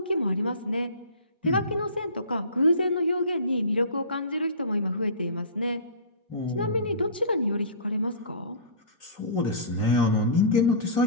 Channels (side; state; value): both; inverted; correlation -0.37